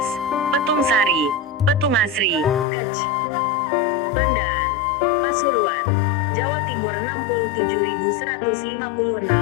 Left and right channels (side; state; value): right; drops out; at 2.7 s